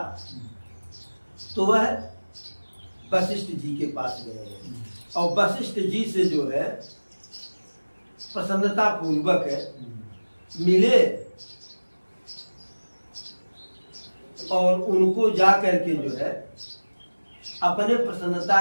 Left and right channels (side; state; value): both; inverted; correlation -1.00